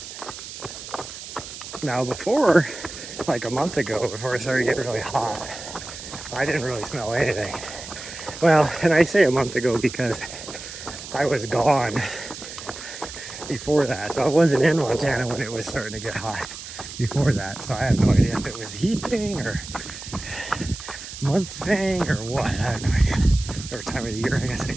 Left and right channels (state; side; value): noise; right; hiss, 12 dB below the sound